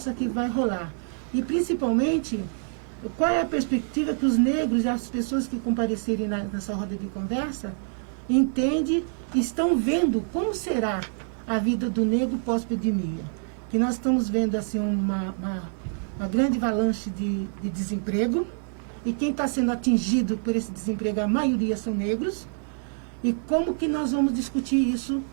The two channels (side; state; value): left; silent; 61 dB below the other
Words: que vai rolar. E principalmente, qual é a perspectiva que os negros e as pessoas que comparecerem nessa roda de conversa entendem, estão vendo como será a vida do negro pós-pandemia. Que nós estamos vendo assim uma grande avalanche de desemprego, e quem está sendo atingido por esse desemprego, a maioria são negros, e como que nós vamos discutir isso